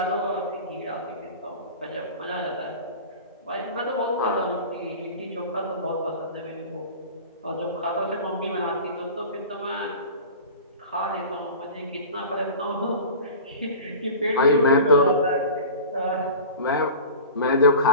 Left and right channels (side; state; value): both; inverted; correlation -0.36